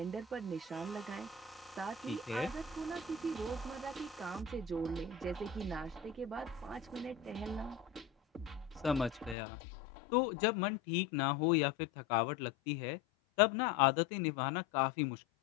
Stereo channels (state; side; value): drops out; right; at 9.3 s